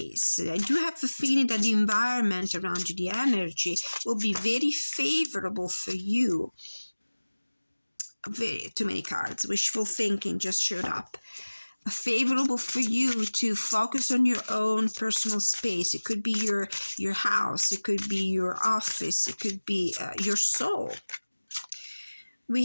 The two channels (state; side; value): inverted; both; correlation -1.00